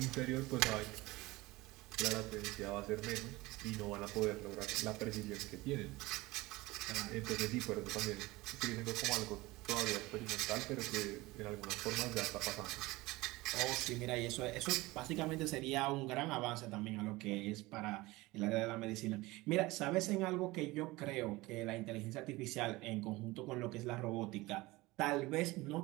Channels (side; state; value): left; quieter; 20.8 dB